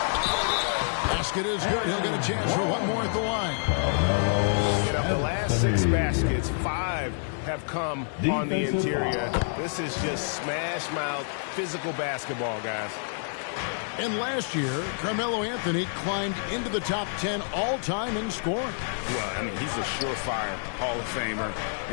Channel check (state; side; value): silent; right; digital silence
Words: Basket is good. He'll get a chance for one more at the line. And of the last 6 baskets, 5 have come on the interior. This is just smash-mouth physical basketball, guys. And last year, Carmelo Anthony climbed into the top 10 all-time in scoring. Well, I mean, he's a surefire Hall of Famer,